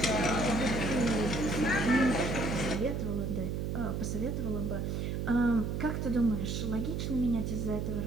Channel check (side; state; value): right; noise; hum, 2 dB below the sound